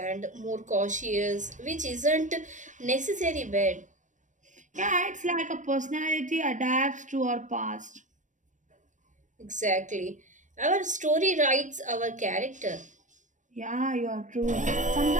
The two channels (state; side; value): late; left; 0.36 ms